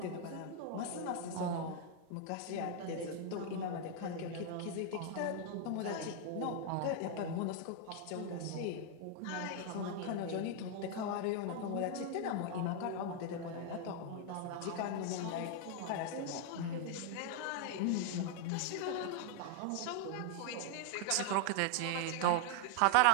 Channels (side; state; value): both; different; correlation 0.00